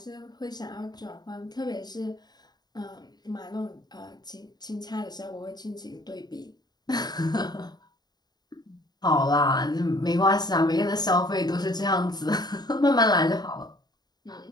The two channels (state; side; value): late; right; 0.20 ms